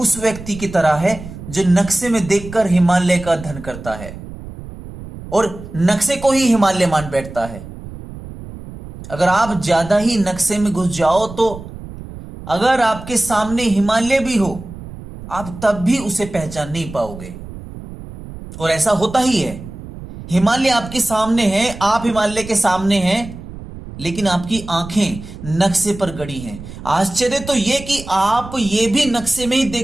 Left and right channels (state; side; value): noise; right; rumble, 13 dB below the sound